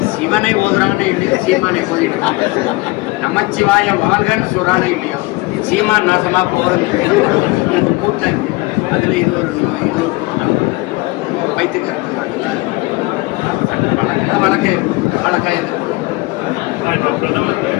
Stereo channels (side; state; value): right; quieter; 23.2 dB